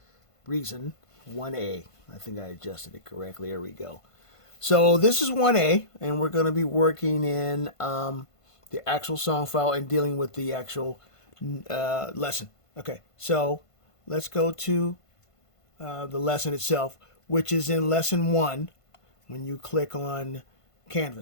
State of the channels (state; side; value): late; right; 1.5 ms